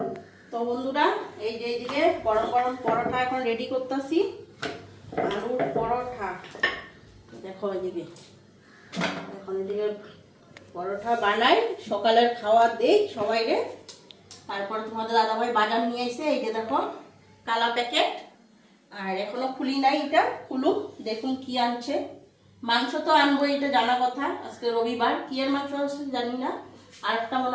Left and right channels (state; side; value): identical; both; correlation 1.00